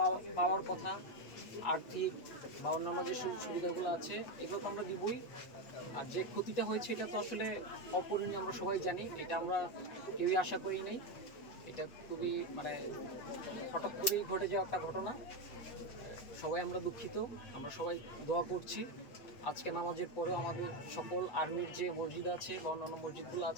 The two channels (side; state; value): right; late; 8.0 ms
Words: পাওয়ার কথা, আর্থিক বা অন্যান্য যে সুবিধাগুলো আছে, এগুলো তো আমরা দিবই। আর যে ক্ষতিটা হয়েছে এটা তো আসলে অপূরণীয়, আমরা সবাই জানি। এটা আমরা কেউই আশা করি নাই। এটা খুবই হঠাৎ করেই ঘটে যাওয়া একটা ঘটনা। সবাই আমরা দুঃখিত, আমরা সবাই দোয়া করছি। আজকে নামাজের পরেও আমাদের সকল আর্মির যে মসজিদ আছে বা অন্যান্য মসজিদগুলো